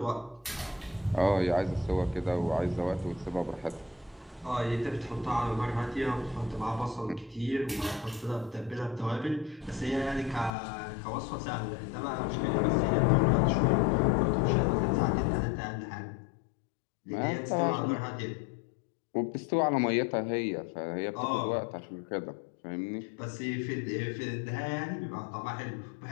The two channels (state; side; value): drops out; right; at 10.5 s